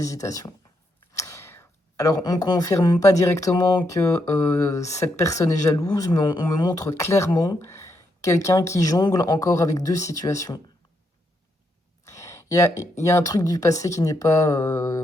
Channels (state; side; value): normal; both; correlation 0.79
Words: Alors, on ne confirme pas directement que cette personne est jalouse, mais on me montre clairement quelqu'un qui jongle encore avec deux situations. Il y a un truc du passé qui n'est